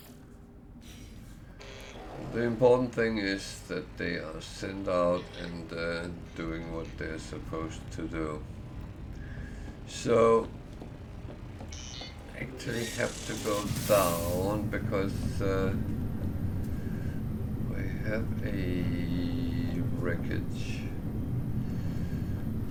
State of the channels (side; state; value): both; identical; correlation 1.00